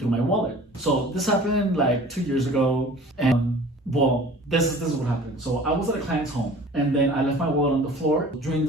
my wallet. So this happened like 2 years ago, and this is what happened. So I was at a client's home, and then I left my wallet on the floor. During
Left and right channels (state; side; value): normal; both; correlation 0.46